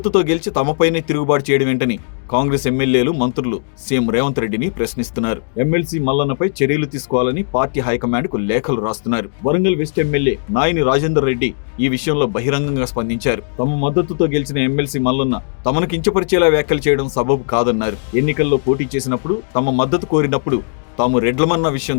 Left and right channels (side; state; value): right; silent; digital silence